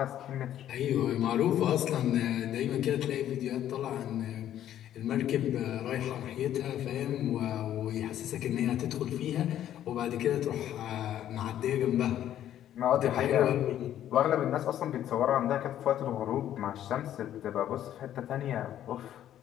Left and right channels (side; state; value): right; quieter; 11.4 dB